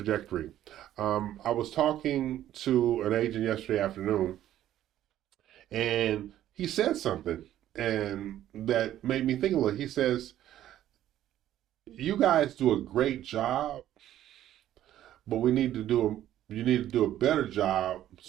I was talking to an agent yesterday afternoon, and he said something, and that made me think a little. He says, "You guys do a great job, but you need to do a better job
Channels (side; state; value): left; quieter; 12.4 dB